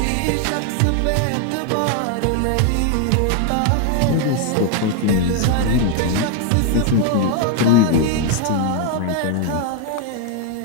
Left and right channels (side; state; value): both; different; correlation 0.00